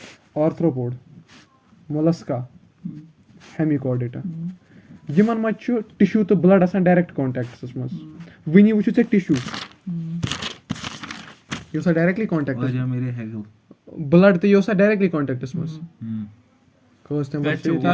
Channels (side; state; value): both; identical; correlation 1.00